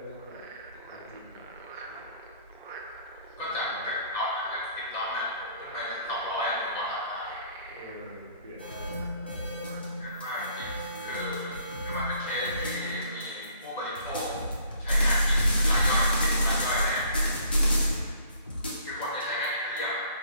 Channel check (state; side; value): inverted; both; correlation -0.59